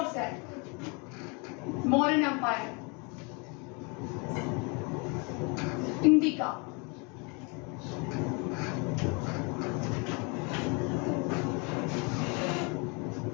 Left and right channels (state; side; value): quieter; right; 31.6 dB